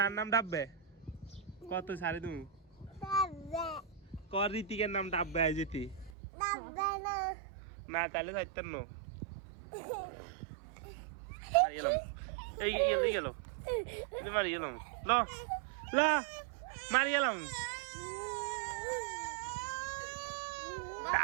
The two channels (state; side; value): drops out; left; at 6.1 s